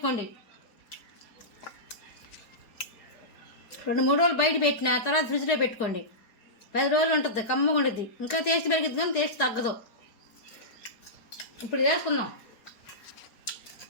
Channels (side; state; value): right; late; 4.7 ms